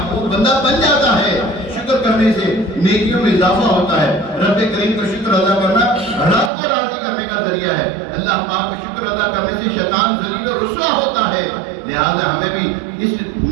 بندہ بن جاتا ہے. شکر کرنے سے نیکیوں میں اضافہ ہوتا ہے. رب کریم کا شکر ادا کرنا رب کو راضی کرنے کا ذریعہ ہے. اللہ پاک کا شکر ادا کرنے سے شیطان ذلیل و رسوا ہوتا ہے. لہذا ہمیں بھی اس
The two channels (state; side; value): drops out; left; at 6.5 s